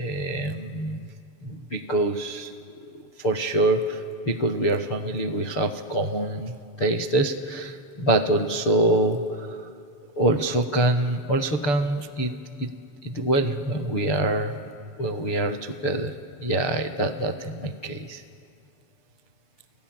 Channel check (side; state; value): right; late; 6.9 ms